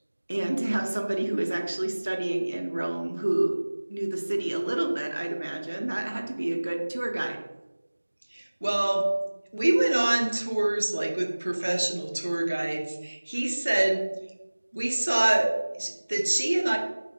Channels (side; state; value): both; inverted; correlation -1.00